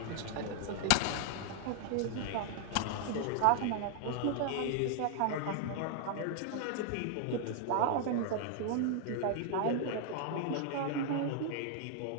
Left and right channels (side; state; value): both; different; correlation 0.00